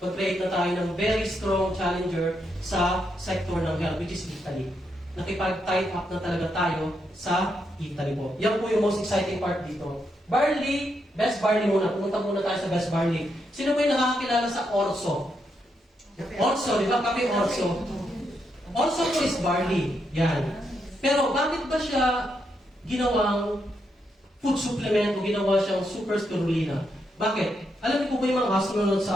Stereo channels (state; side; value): normal; both; correlation 0.80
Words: mag-create na tayo ng very strong challenger sa sector ng health, which is Italy. Nakipag-tight up na talaga tayo sa Italy po. Yan po yung most exciting part dito. Barley, best barley muna. Pumunta muna tayo sa best barley. Sino po yung nakakakilala sa Orso? Orso, di ba? Kape Orso. Orso po is barley. Yan. Pero bakit ba siya ginawang food supplement o ginawa siyang super spirulina? Bakit? Alam niyo po ba yung mga astronauts